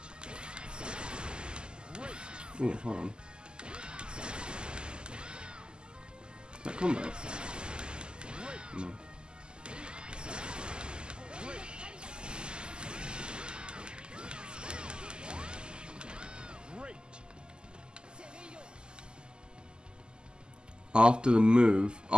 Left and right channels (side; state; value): left; late; 0.047 ms